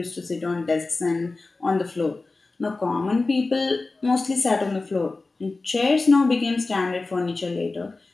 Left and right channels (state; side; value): quieter; right; 3.5 dB